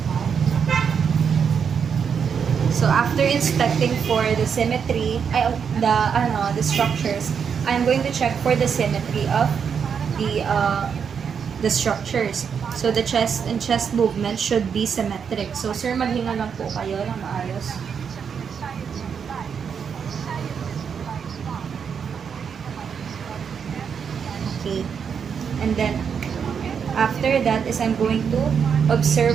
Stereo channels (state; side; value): quieter; left; 6.9 dB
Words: So after inspecting for the symmetry, the structures, I'm going to check for the symmetry of the structures. So the chest and chest movement should be symmetric. So sir, maghinga lang po kayo ng maayos. Okay. And then after that is I'm going to